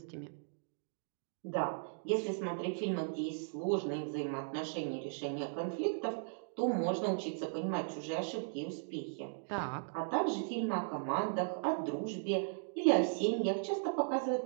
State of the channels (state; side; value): silent; left; digital silence